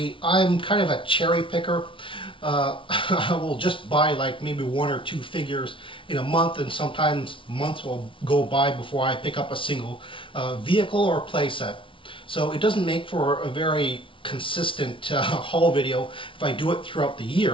I'm kind of a cherry picker. I will just buy like maybe one or two figures in a month, and sometimes months will go by before I pick up a single vehicle or playset. So it doesn't make for a very consistent haul video if I do it throughout the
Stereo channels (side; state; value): right; late; 0.25 ms